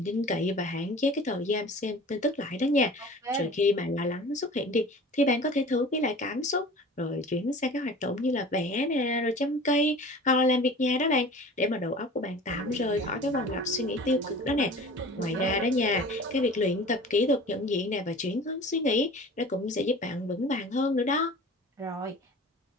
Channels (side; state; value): both; normal; correlation 0.41